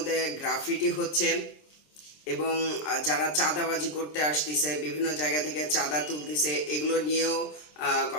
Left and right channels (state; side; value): late; right; 26 ms